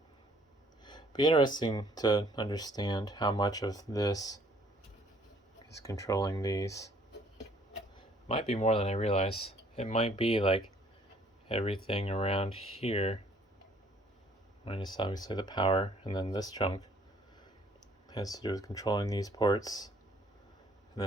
Be interesting to understand how much of this is controlling these. Might be more than I realize. It might be like everything around here, minus obviously the power, and then this chunk has to do with controlling these ports. And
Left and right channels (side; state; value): both; normal; correlation 0.61